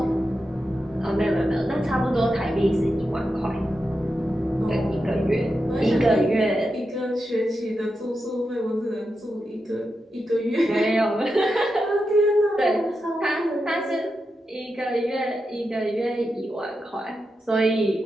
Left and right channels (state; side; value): normal; both; correlation 0.88